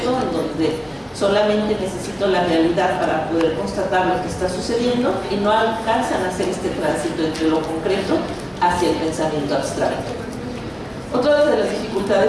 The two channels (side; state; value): both; identical; correlation 1.00